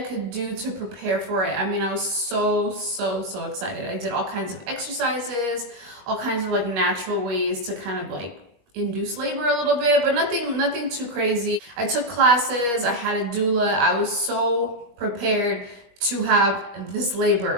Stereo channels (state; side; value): late; left; 21 ms